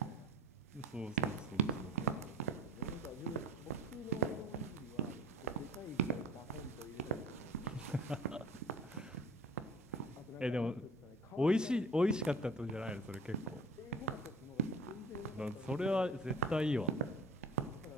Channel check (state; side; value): normal; both; correlation 0.45